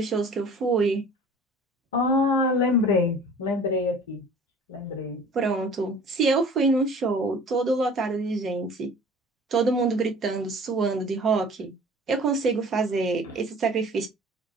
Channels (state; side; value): normal; both; correlation 0.46